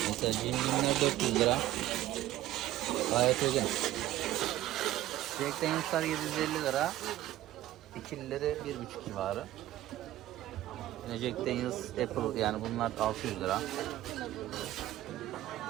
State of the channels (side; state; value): left; quieter; 14.6 dB